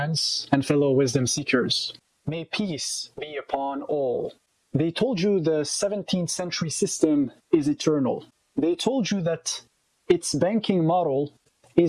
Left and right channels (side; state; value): both; identical; correlation 1.00